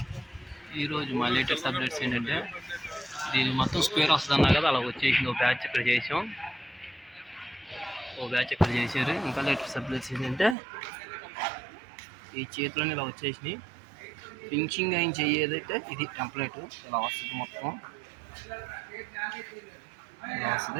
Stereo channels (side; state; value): left; drops out; at 10.6 s